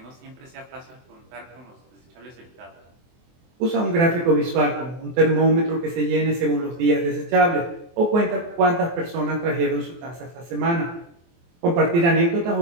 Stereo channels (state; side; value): late; left; 24 ms